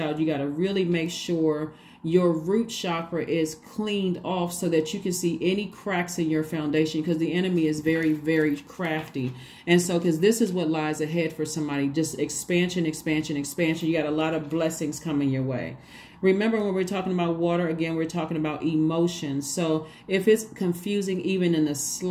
You got to really make sure your root chakra is cleaned off so that you can see any cracks in your foundation, because the enemy is very, very crafty. And so, because this is what lies ahead for somebody, just expansion, expansion, expansion. You got a lot of blessings coming your way. Remember, when we're talking about water, again, we're talking about emotions. So if it's confusing even in the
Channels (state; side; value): identical; both; correlation 1.00